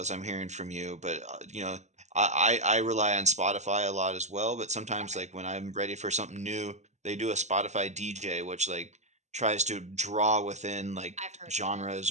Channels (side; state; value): left; late; 0.33 ms